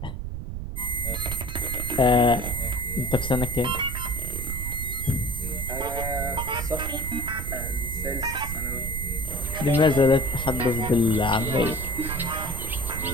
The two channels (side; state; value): right; noise; rumble, 5 dB below the sound